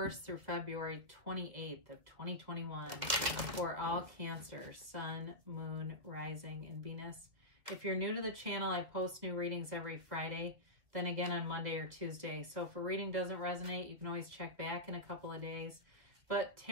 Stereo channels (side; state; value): left; late; 2.2 ms